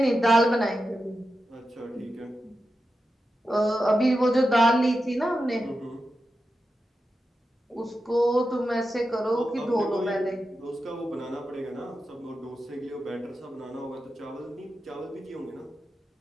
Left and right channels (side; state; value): both; normal; correlation 0.90